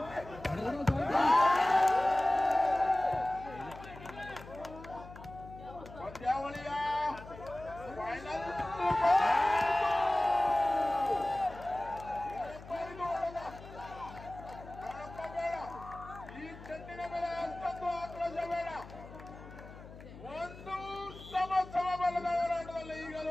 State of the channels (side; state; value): left; noise; hum, 16 dB below the sound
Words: ಪಂದ್ಯಾವಳಿಯ ಫೈನಲ್ ಬೇಡ, ಈ ಚೆಂಡಿನ ಮೇಲೆ ಅಷ್ಟೊಂದು ಆಕ್ರೋಶ ಬೇಡ. ಒಂದು ಸಮ ಬಲದ ಹೋರಾಟದಲ್ಲಿ